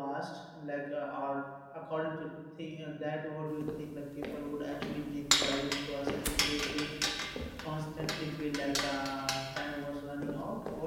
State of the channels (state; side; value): identical; both; correlation 1.00